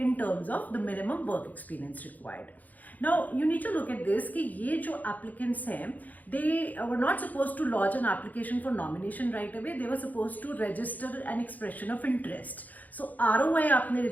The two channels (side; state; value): right; late; 0.080 ms